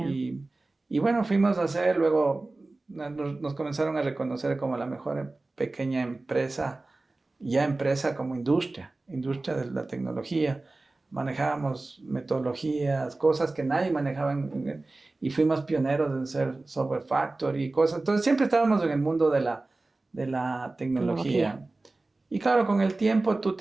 Y bueno, fuimos a hacer, luego nos comenzaron a reconocer como la mejor pequeña empresa, ya empresa como industria de la tecnología. Manejábamos metodologías, cosas que nadie manejaba y fuimos pioneros en ser software factory y cosas. Entonces siempre estábamos en el mundo de la tecnología. Y claro, con el tiempo tú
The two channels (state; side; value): quieter; left; 3.2 dB